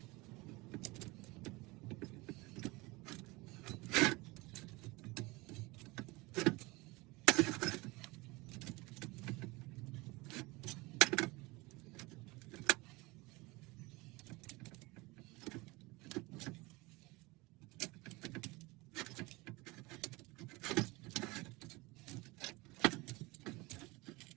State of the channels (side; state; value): left; quieter; 23.5 dB